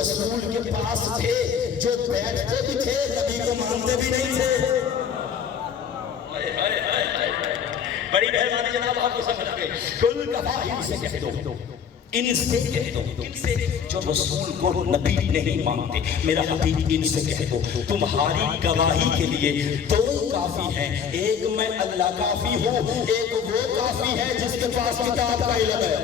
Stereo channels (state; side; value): quieter; right; 7.4 dB